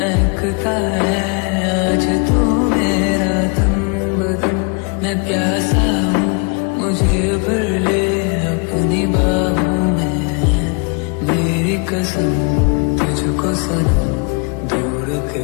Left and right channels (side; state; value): right; quieter; 34.7 dB